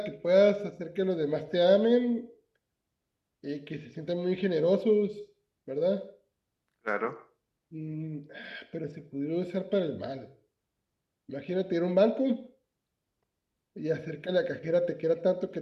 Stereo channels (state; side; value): identical; both; correlation 1.00